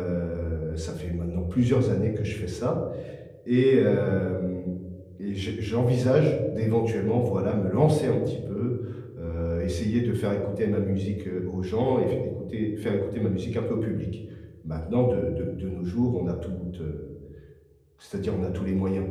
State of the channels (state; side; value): identical; both; correlation 1.00